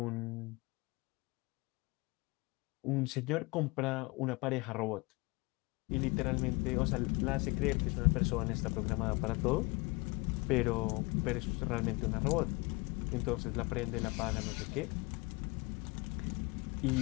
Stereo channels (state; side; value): quieter; right; 25.9 dB